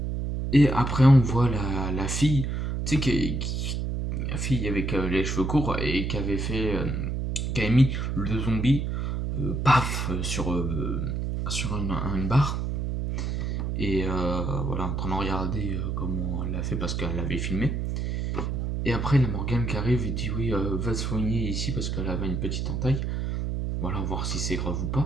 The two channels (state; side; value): noise; right; hum, 1 dB below the sound